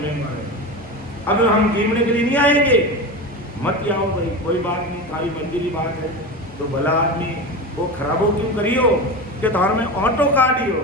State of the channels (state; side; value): normal; both; correlation 0.25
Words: नहीं मारे, अब हम गिनने के लिए नहीं आएंगे, मत आओ भाई, कोई बात नहीं, खाली मंजिली बात है, तो भला आदमी वो खराबो क्यों करियो कि धार में ऑटो